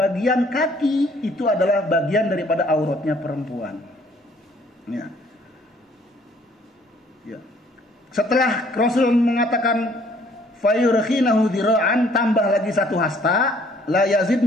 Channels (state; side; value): normal; both; correlation 0.60